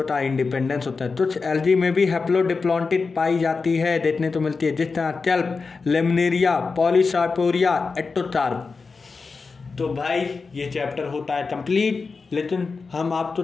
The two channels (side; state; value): right; quieter; 4.5 dB